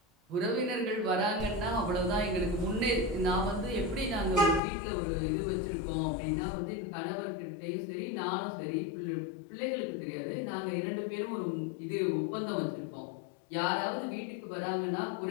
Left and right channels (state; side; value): drops out; right; at 4.6 s